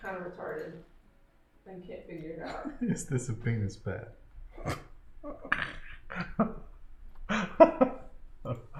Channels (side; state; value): both; identical; correlation 1.00